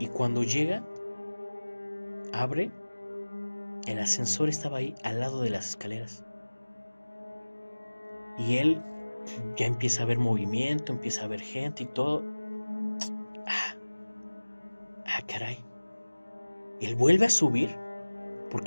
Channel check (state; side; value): inverted; both; correlation -1.00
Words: cuando llega, abre, el ascensor estaba ahí al lado de las escaleras. Y él ya empieza a ver movimiento, empieza a ver gente y todo. Él vuelve a subir